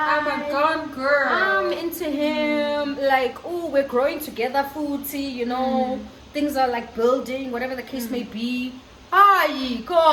I'm a gone girl. I'm into him. Like, oh, we're growing together, foodie, you know. Things are like building, whatever the case may be. Ay,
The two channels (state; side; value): identical; both; correlation 1.00